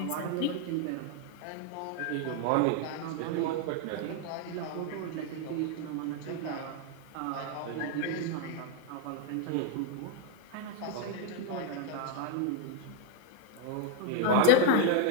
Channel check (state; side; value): different; both; correlation 0.00